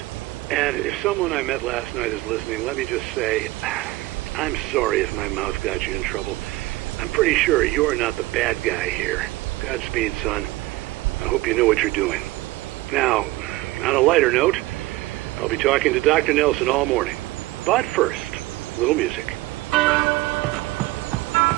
And if someone I met last night is listening, let me just say, I'm sorry if my mouth got you in trouble. I'm pretty sure you're not the bad guy here. Godspeed, son. I hope you know what you're doing. Now, on a lighter note, I'll be talking to Dr. Nelson all morning. But first, a little music.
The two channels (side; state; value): left; quieter; 19.0 dB